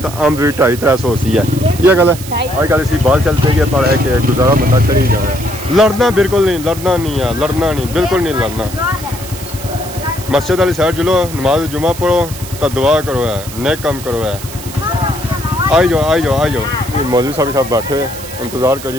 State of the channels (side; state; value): right; noise; hiss, 13 dB below the sound